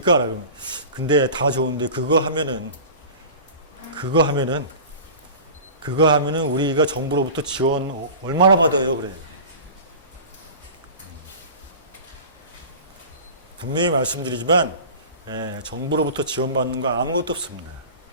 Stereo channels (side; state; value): both; inverted; correlation -0.37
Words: 그러면 근데 다 좋은데 그거 하면은 우리가 정부로부터 지원 얼마나 받아요? 그래요. 분명히 말씀드리지만 정부로부터 지원받는 거 아무것도 없습니다.